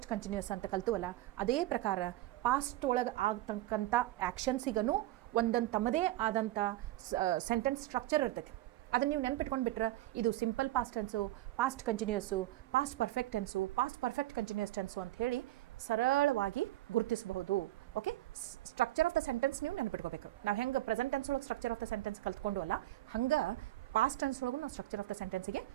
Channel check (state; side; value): quieter; left; 16.2 dB